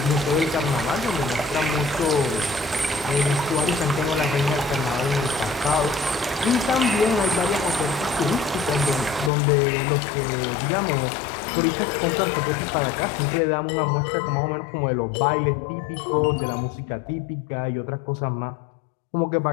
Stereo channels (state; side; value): drops out; right; at 9.3 s